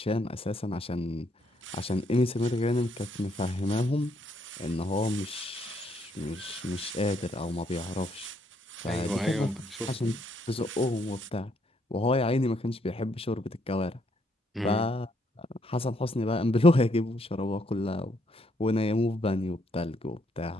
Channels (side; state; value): both; normal; correlation 0.72